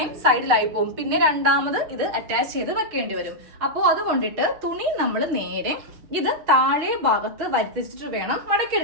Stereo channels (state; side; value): late; left; 6.6 ms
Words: സൈഡിലായി പോകും. പിന്നെ രണ്ടാമത് ഇത് അറ്റാച്ച് ചെയ്ത് വെക്കേണ്ടി വരും. അപ്പോൾ അതുകൊണ്ടിട്ട് തുണി നമ്മൾ നേരെ ഇത് താഴെ ഭാഗത്ത് വരുത്തിച്ചിട്ട് വേണം